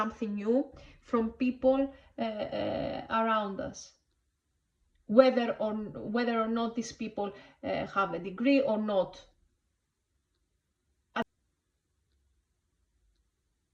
new from people around us. Whether or not these people have a degree or not.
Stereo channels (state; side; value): identical; both; correlation 1.00